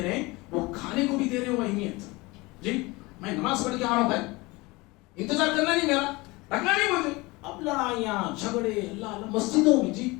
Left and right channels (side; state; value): right; quieter; 23.3 dB